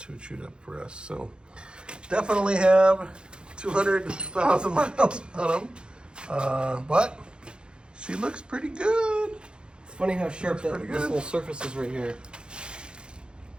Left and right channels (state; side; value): late; left; 0.051 ms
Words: chewed up for us. So definitely have 200,000 miles on them. But she looks pretty good. It's funny how sharp this little surface is right here.